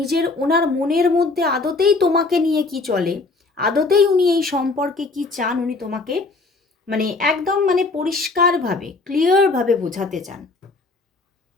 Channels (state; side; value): quieter; right; 3.7 dB